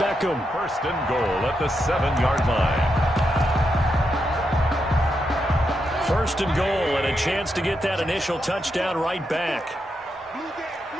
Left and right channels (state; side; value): normal; both; correlation 0.84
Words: 1st and goal at the 7-yard line. 1st and goal, and a chance to get that initial touchdown right back.